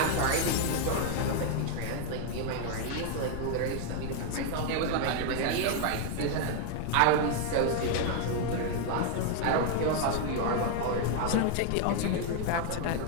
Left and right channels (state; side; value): different; both; correlation 0.00